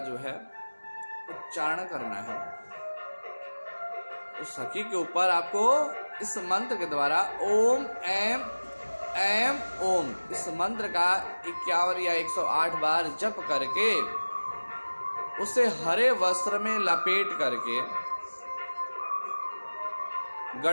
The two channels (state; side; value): inverted; both; correlation -1.00